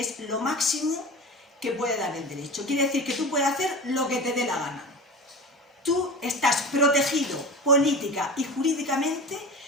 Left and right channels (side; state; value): both; normal; correlation 0.31